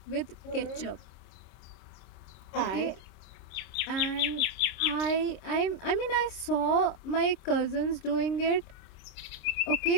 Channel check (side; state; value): right; late; 26 ms